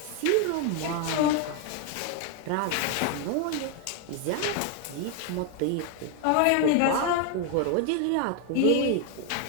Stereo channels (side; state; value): both; different; correlation 0.01